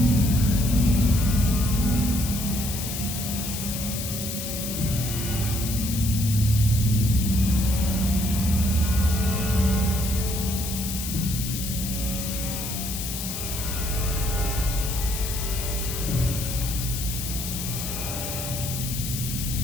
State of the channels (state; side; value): noise; left; hiss, 5 dB below the sound